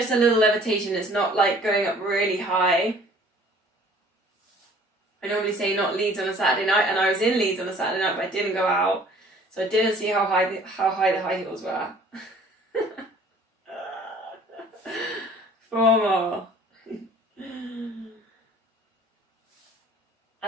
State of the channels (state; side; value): normal; both; correlation 0.53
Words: a little levitation. It's not like going up really high. I normally say not Leeds on a Saturday night, and I was in Leeds on a Saturday night, but I didn't go out, so I didn't see how high the high heels were. 4 more.